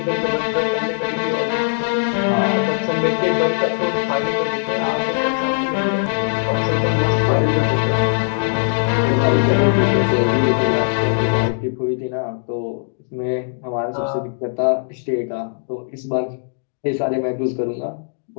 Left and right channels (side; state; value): right; silent; digital silence